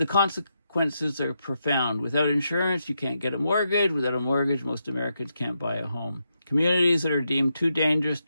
consequences are profound. Without insurance, you can't get a mortgage. Without a mortgage, most Americans can't buy a home. Communities that are deemed too dangerous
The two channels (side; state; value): both; inverted; correlation -0.83